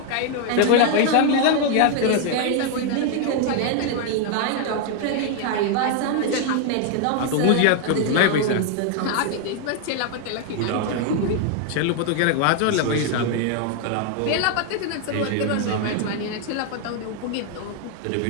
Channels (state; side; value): different; both; correlation 0.00